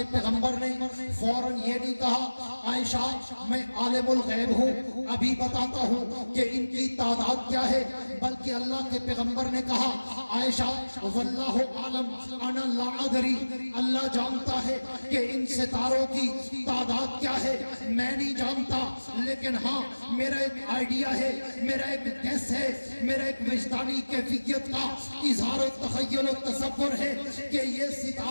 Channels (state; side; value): inverted; both; correlation -1.00